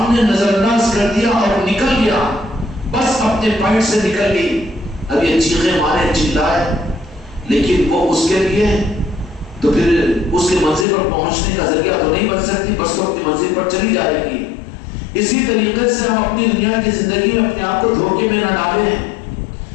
نظر انداز کر دیا اور نکل گیا، بس اپنے پوائنٹ سے نکل گئی، اب یہ چیخیں مارے چلائے، لیکن وہ اس کے لیے تو پھر اس کے منزل پر پہنچنے کا ذریعہ تو نہیں بن سکتی، بس تو اپنی منزل پر چلی جائے گی۔ اسی طریقے سے ہم اپنی دنیا کی زندگی میں اپنے آپ کو دھوکے میں نہ ڈالیں۔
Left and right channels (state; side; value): drops out; right; at 10.9 s